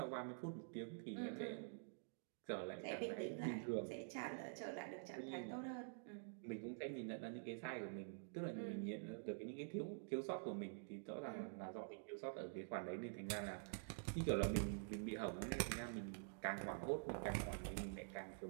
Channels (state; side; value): silent; left; digital silence